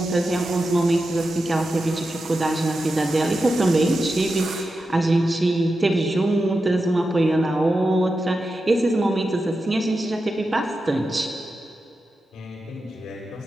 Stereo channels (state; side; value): normal; both; correlation 0.90